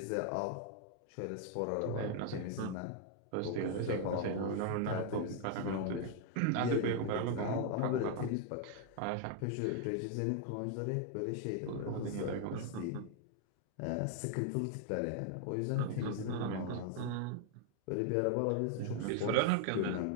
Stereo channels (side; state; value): both; different; correlation 0.00